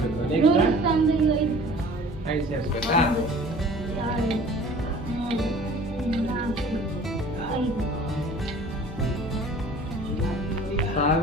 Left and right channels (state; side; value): normal; both; correlation 0.47